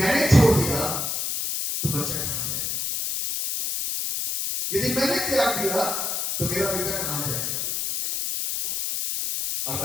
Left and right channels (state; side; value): noise; left; hiss, 1 dB below the sound